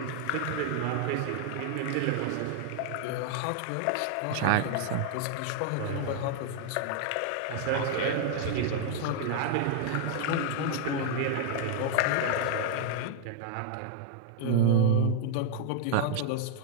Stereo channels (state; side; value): different; both; correlation 0.00